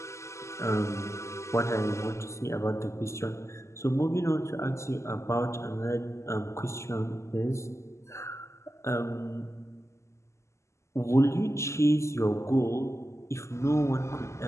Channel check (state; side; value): late; right; 0.13 ms